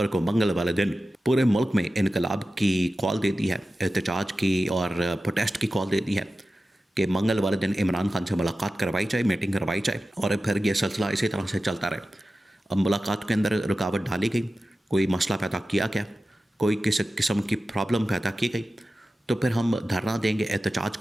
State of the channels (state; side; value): normal; both; correlation 0.94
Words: को मंगल वाले दिन पूरे मुल्क में इनकलाब की कॉल दे दी है, एहतजाज की और प्रोटेस्ट की कॉल दे दी है कि मंगल वाले दिन इमरान खान से मुलाकात करवाई जाए, मीटिंग करवाई जाए और फिर ये सिलसिला इसी तरह से चलता रहे। अब मुलाकात के अंदर रुकावट डाली गई, कोई मसला पैदा किया गया, कोई किसी किस्म की प्रॉब्लम पैदा की गई, तो फिर हम धरना देंगे, एहतजाज